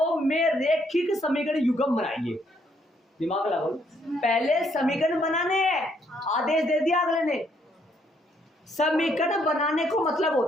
में रेखिक समीकरण युग्म बनाइए। दिमाग लगाओ, पहले समीकरण बनाने हैं, आदेश दे दिया अगले ने। समीकरण बनाने को मतलब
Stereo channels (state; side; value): normal; both; correlation 0.70